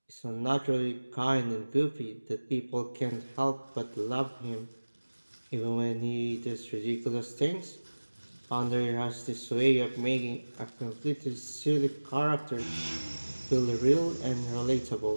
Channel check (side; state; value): both; inverted; correlation -1.00